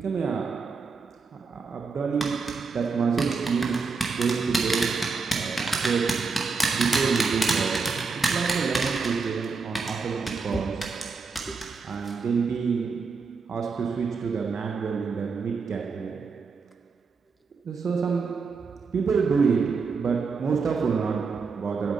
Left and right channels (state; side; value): quieter; left; 4.7 dB